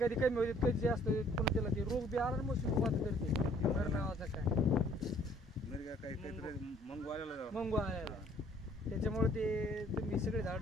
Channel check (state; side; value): normal; both; correlation 0.59